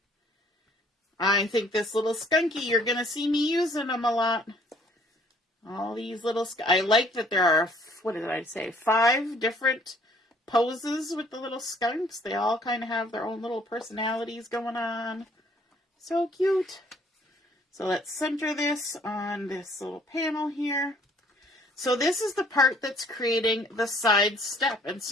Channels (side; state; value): both; normal; correlation 0.60